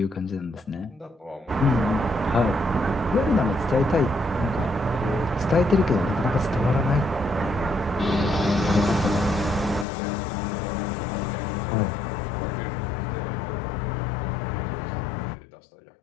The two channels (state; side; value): drops out; right; at 9.9 s